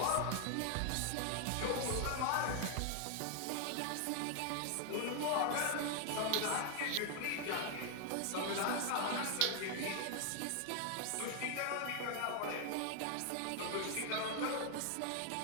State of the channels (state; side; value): different; both; correlation 0.00